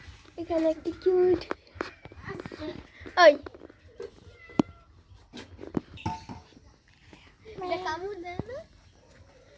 এখানে একটি কিউট ওই এটা কামড় দেয় না?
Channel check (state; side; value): identical; both; correlation 1.00